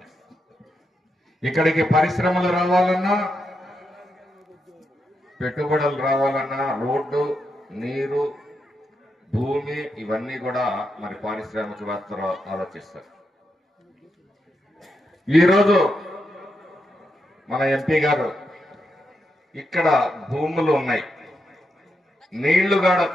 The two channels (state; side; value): normal; both; correlation 0.84